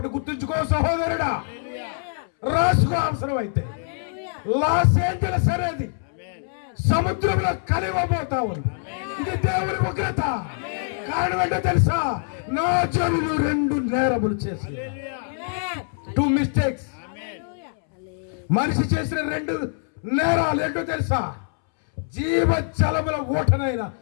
గుర్తుంచుకో సహోదరుడా, రాసుకో అవసరం అయితే. లాస్ ఏంజెల్స్ అనేది సముద్రంలో కలివబోతా ఉంది. ఇది దేవుని ఉగ్రత. కారణం ఏంటో తెలుసా? నా జనులు 2 నేరములు చేసి, 2 మిస్టేక్స్. మనిషి చేసిన 2 నేరాలు ఏంటో తెలుసా? జీవజలముల ఊటనైన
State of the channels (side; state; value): right; silent; 63 dB below the other